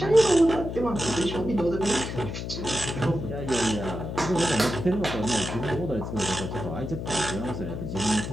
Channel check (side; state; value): left; noise; hum, 6 dB below the sound